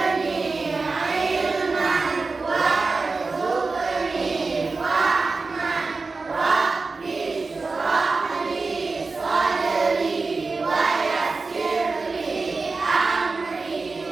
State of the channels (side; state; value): left; quieter; 4.0 dB